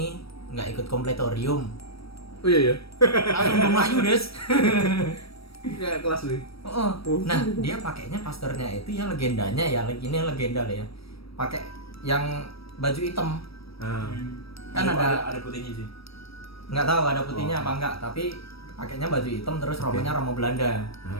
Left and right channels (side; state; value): right; late; 0.76 ms